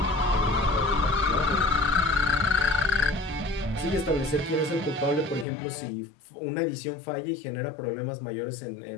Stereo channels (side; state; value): right; drops out; at 5.5 s